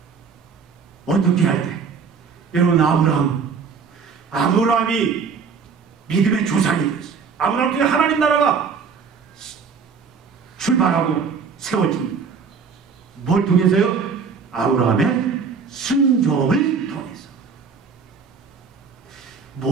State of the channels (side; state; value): left; quieter; 5.7 dB